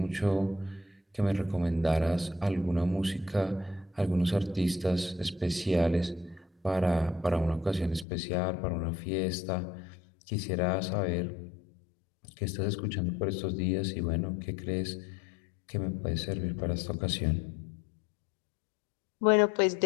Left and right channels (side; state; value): right; drops out; at 8.1 s